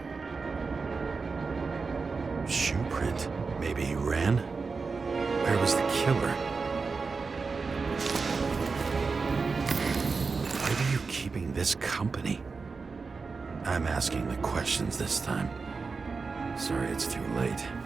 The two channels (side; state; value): left; quieter; 4.6 dB